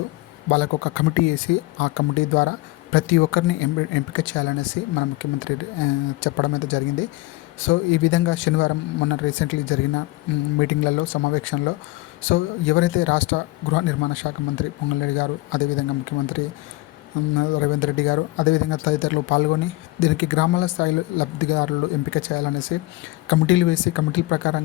వాళ్ళకు ఒక కమిటీ వేసి, ఆ కమిటీ ద్వారా ప్రతి ఒక్కరిని ఎంపిక చేయాలనేసి మన ముఖ్యమంత్రి చెప్పడం అయితే జరిగింది. సో ఈ విధంగా శనివారం మొన్న రీసెంట్లీ జరిగిన మీటింగ్లలో, సమావేశంలో సో ఎవరైతే రాష్ట్ర గృహ నిర్మాణ శాఖ మంత్రి పొంగులేటి గారు, అదేవిధంగా ముఖ్యమంత్రి రేవంత్ రెడ్డి గారు, అదేవిధంగా తదితరులు పాల్గొని దీనికి గ్రామాల స్థాయిలో లబ్ధిదారులు ఎంపిక చేయాలనేసి కమిటీలు వేసి, కమిటీల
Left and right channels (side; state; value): right; quieter; 20.4 dB